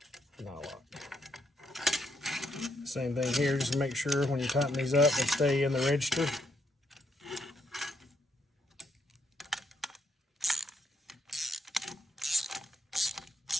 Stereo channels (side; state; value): both; normal; correlation 0.76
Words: not a lot. Same thing here, just make sure when you tighten these up, they stay in the register.